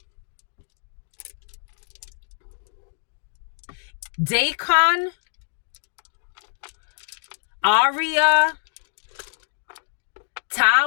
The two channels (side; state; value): right; silent; digital silence